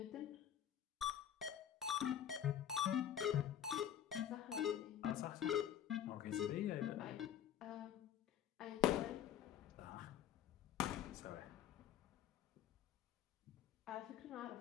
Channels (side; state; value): right; quieter; 10.0 dB